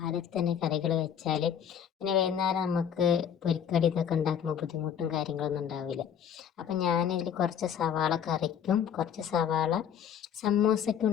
തന്നെ കറികൾ വെച്ചാൽ പിന്നെ വൈകുന്നേരം നമുക്ക് പൊരിക്കടി ഇതൊക്കെ ഉണ്ടാക്കുമ്പോൾ ബുദ്ധിമുട്ടും കാര്യങ്ങളൊന്നും ഉണ്ടാവില്ല. അപ്പം ഞാനിതിൽ കുറച്ച് സവാള കറിക്കും കുറച്ച് സവാള സമൂസയ്ക്കും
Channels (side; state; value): right; quieter; 8.5 dB